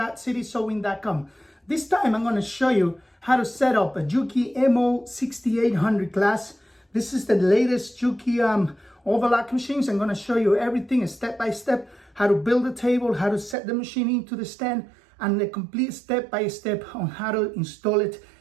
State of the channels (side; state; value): left; drops out; at 13.6 s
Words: This time I'm going to show you how to set up a Juki MO-6800 class. This is the latest Juki Overlock machines. I'm going to show you everything step by step, how to build a table, how to set the machine into the stand, and the complete step by step on how to install it,